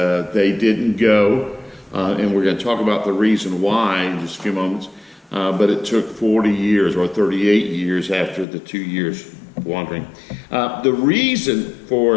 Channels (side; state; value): right; drops out; at 8.5 s